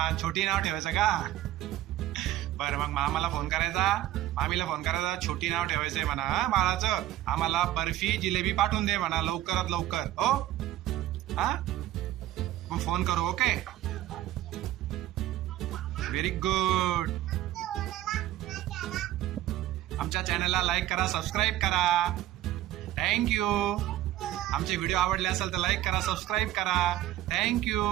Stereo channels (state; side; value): quieter; left; 14.1 dB